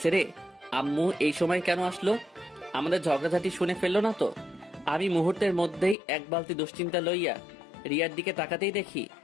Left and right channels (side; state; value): right; drops out; at 6.0 s